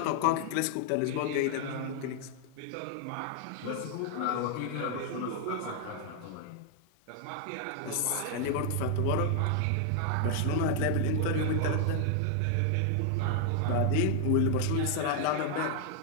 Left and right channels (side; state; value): both; different; correlation 0.00